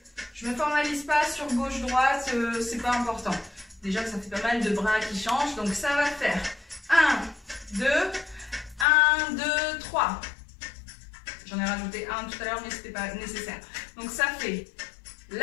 Je ne me formalise pas sur gauche-droite, c'est pas important. Déjà que ça fait pas mal de bras qui changent, donc ça va faire 1, 2, 1, 2, 3. J'en ai rajouté un tout à l'heure, mais ce n'était pas nécessaire. Donc ça fait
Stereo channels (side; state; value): right; drops out; at 8.8 s